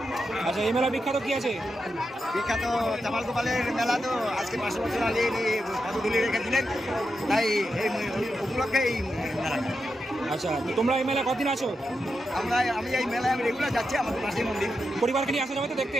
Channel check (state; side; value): normal; both; correlation 0.87